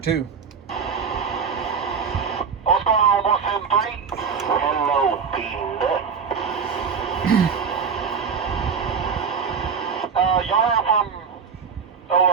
What's going on, 173? Hello, Peanut. Y'all heard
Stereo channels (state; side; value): quieter; left; 6.1 dB